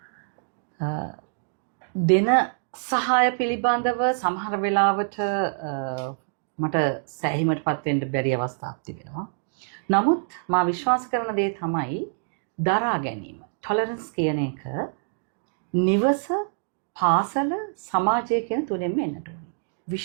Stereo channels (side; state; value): left; silent; digital silence